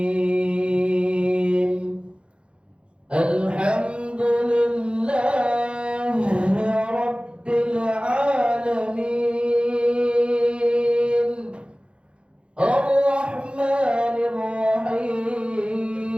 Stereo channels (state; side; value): late; left; 0.057 ms